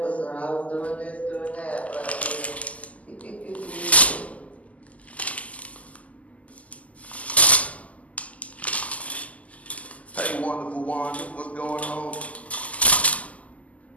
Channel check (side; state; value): right; late; 0.071 ms